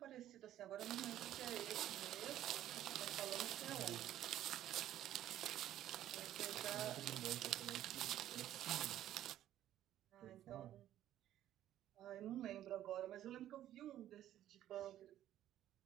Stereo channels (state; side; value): quieter; left; 12.4 dB